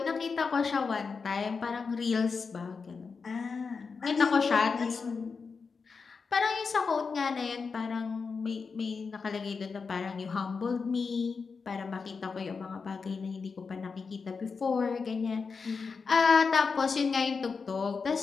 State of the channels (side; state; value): right; quieter; 5.0 dB